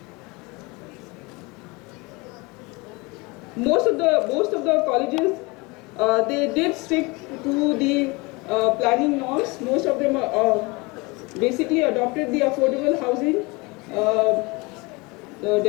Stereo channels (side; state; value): right; quieter; 25.9 dB